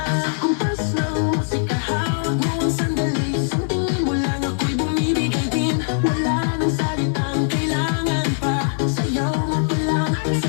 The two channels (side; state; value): right; silent; 65 dB below the other